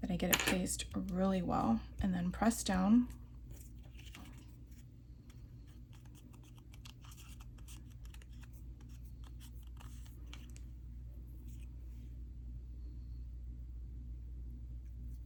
that I get it placed really well, and then press down.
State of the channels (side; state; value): both; identical; correlation 1.00